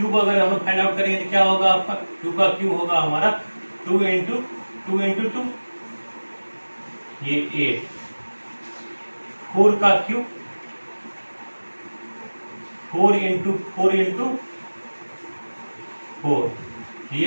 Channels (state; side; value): inverted; both; correlation -1.00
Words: अगर हम लोग फाइंड आउट करेंगे तो क्या होगा आपका? 2 का क्यूब होगा हमारा 2 इंटू 2 ये 8। 4 का क्यूब 4 इंटू 4 ये